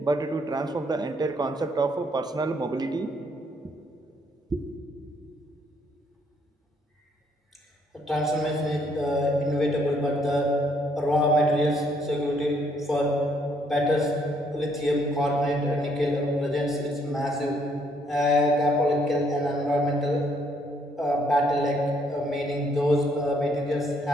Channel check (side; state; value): both; normal; correlation 0.68